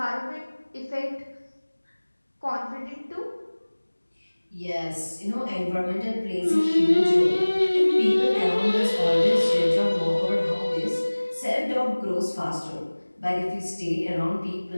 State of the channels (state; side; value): inverted; both; correlation -1.00